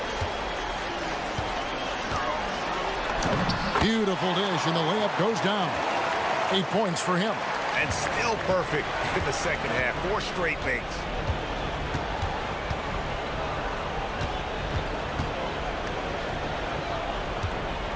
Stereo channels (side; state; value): both; identical; correlation 1.00